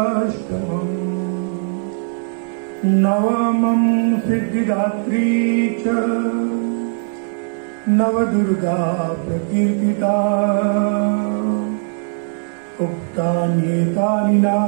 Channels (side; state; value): left; silent; digital silence